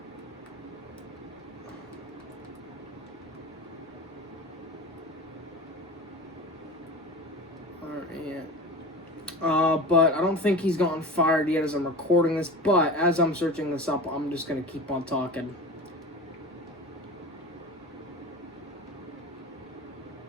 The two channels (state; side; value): normal; both; correlation 0.32